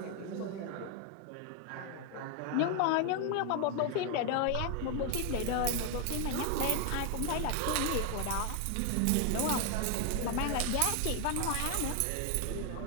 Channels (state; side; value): different; both; correlation 0.01